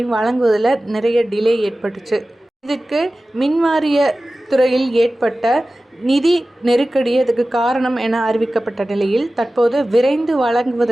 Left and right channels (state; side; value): normal; both; correlation 0.96